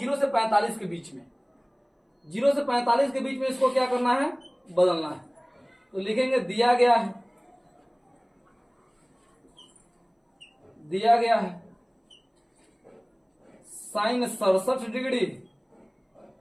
से 45 के बीच में। 0 से 45 के बीच में इसको क्या करना है? बदलना है। तो लिखेंगे दिया गया है sine 67 degree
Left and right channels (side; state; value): both; identical; correlation 1.00